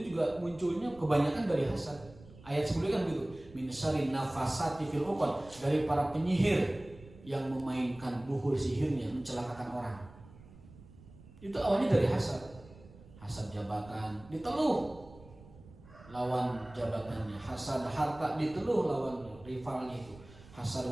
juga munculnya kebanyakan dari hasad. Ayat sebelumnya kan gitu, min syarri nafasati fil 'uqad, dari para penyihir yang memainkan buhur sihirnya, mencelakakan orang. Itu awalnya dari hasad. Hasad jabatan diteluh lawan jabatannya, hasad harta diteluh lawan rivalnya itu, hasad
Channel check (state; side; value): noise; right; rumble, 21 dB below the sound